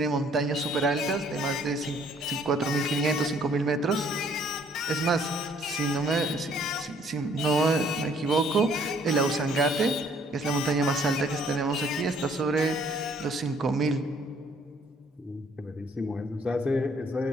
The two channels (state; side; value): normal; both; correlation 0.62